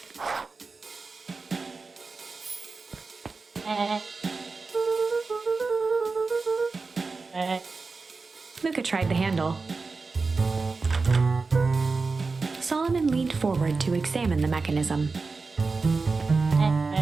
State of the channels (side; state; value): left; quieter; 4.2 dB